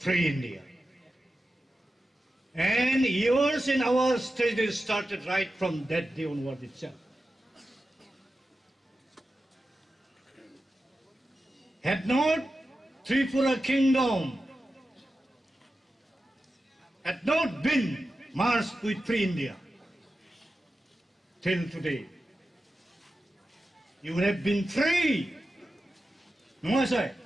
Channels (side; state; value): both; normal; correlation 0.92